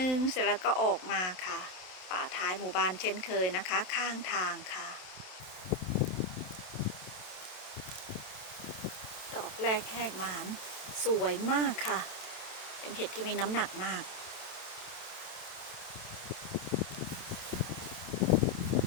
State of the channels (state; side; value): late; right; 27 ms